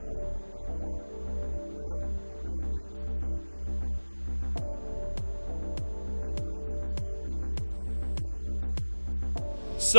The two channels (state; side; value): inverted; both; correlation -1.00